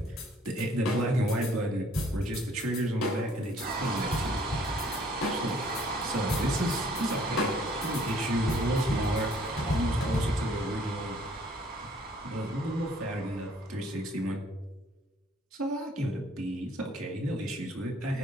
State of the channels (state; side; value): normal; both; correlation 0.60